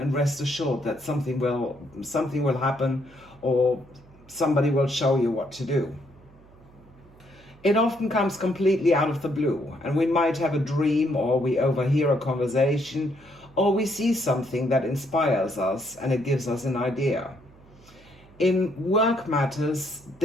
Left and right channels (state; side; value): noise; right; hum, 26 dB below the sound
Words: rest assured that something will happen, or somebody will show you what to do. It often comes completely out of the blue, and we might have a dream, or we overhear a conversation, or we see something that inspires us and it gives us an idea. In work matters,